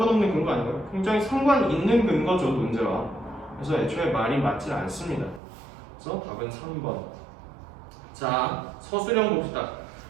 근거 아닌가요? 굉장히 상관 있는 근거죠, 논제와. 그래서 애초에 말이 맞지 않습니다. 그래서 답은 3번. 자, 서술형 봅시다.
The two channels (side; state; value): left; drops out; at 5.4 s